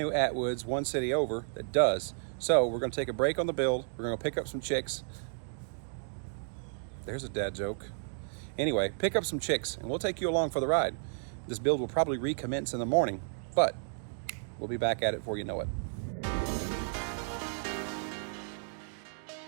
Atwoods one city over that does. So we're gonna take a break on the build. We're gonna pick up some chicks. There's a dad joke. Anyway, pick up some chicks and we'll take you along for the ride. This build will probably recommence in the morning, but we'll be back at it before you know it.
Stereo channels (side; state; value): left; silent; digital silence